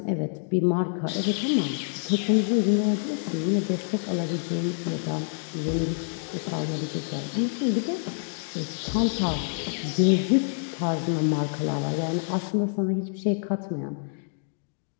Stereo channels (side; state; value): right; silent; digital silence